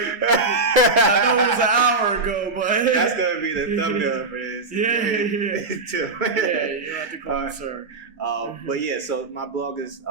know it was an hour ago, but that's gonna be the thumbnail for this. Tim. Yeah, you don't have to call me sir. But yeah, so my blog is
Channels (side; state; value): left; quieter; 3.7 dB